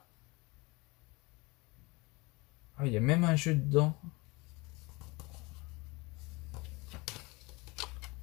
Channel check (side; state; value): right; quieter; 25.2 dB